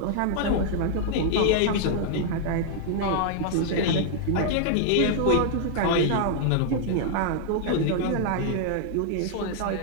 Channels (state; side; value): different; both; correlation 0.00